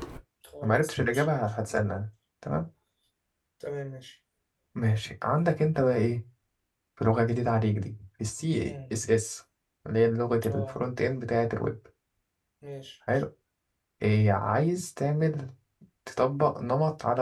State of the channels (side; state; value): both; identical; correlation 1.00